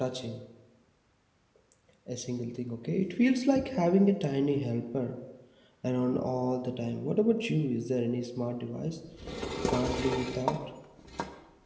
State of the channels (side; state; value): both; identical; correlation 1.00